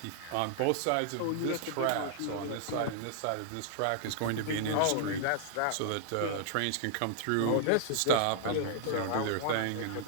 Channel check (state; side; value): different; both; correlation -0.01